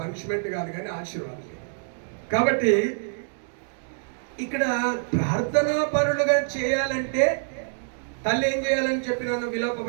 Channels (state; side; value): silent; left; digital silence